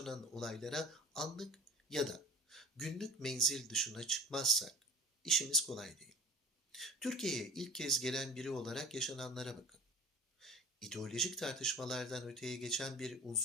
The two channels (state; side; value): normal; both; correlation 0.39